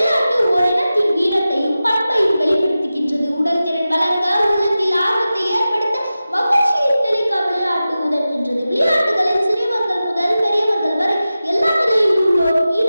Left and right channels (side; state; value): both; inverted; correlation -0.94